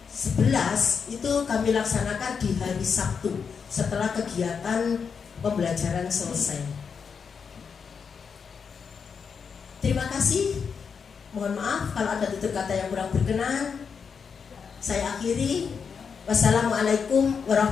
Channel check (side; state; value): right; quieter; 6.2 dB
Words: 11 itu kami laksanakan di hari Sabtu setelah kegiatan pembelajaran selesai. Terima kasih. Mohon maaf kalau ada tutur kata yang kurang berkenan. Saya akhiri. Wassalamualaikum